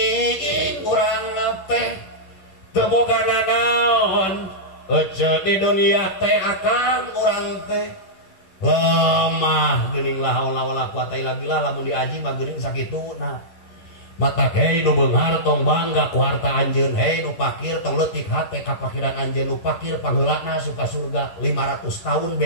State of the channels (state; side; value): late; right; 10 ms